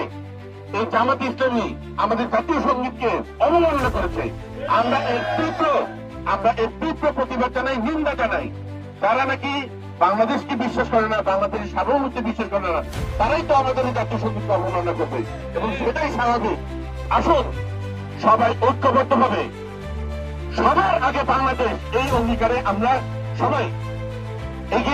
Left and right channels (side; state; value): both; identical; correlation 1.00